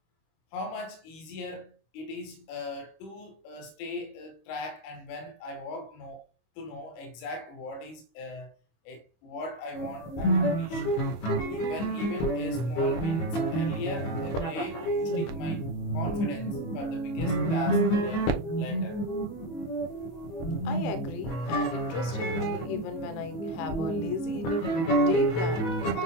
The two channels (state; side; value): late; right; 25 ms